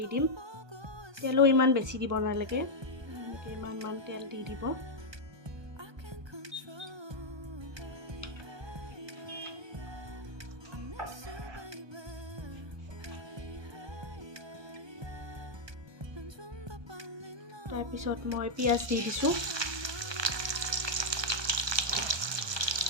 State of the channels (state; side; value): late; left; 1.2 ms